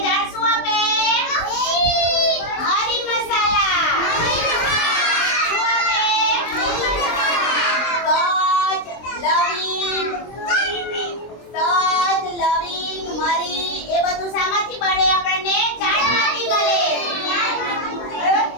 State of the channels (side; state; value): right; late; 23 ms